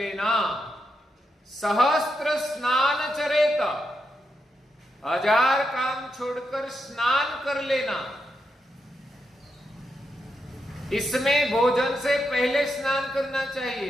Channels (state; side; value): normal; both; correlation 0.84